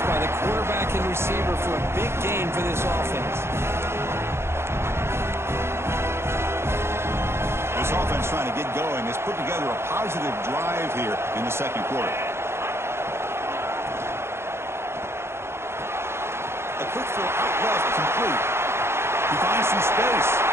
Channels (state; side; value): late; left; 0.12 ms